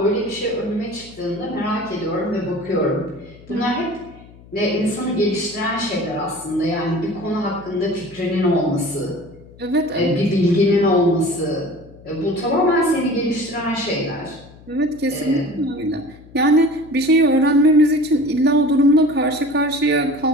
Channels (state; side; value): noise; left; hum, 22 dB below the sound